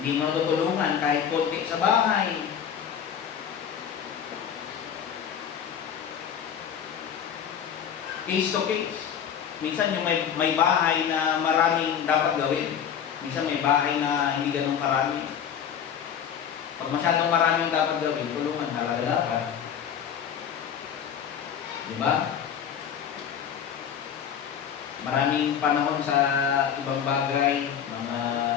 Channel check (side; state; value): right; quieter; 8.5 dB